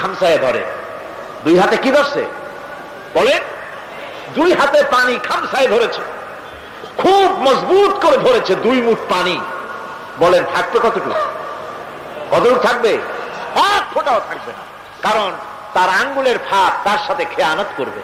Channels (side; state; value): both; identical; correlation 1.00